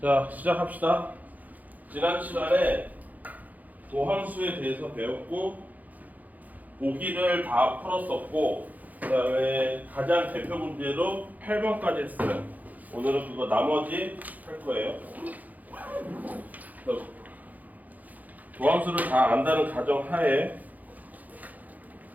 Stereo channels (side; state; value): left; late; 0.080 ms